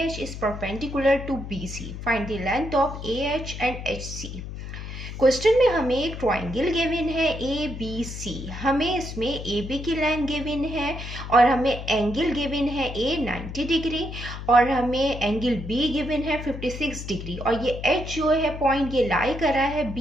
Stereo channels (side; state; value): left; noise; hum, 9 dB below the sound